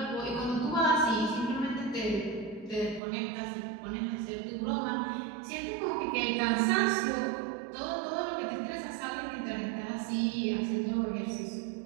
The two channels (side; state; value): left; drops out; at 3.0 s